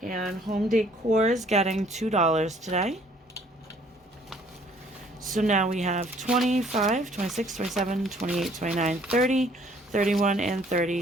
and home decor is getting $2 today. So now we have 25, 26, 27, 28, 29, 30, 31, and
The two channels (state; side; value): normal; both; correlation 0.60